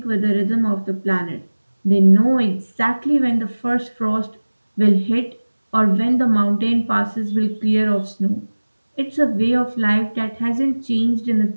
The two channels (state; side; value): inverted; both; correlation -1.00